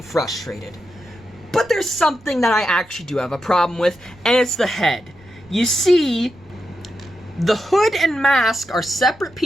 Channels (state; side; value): noise; right; rumble, 26 dB below the sound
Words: frustrated. But there's something that I actually do have a problem with, and it's the head. You see, the hood and mask are separate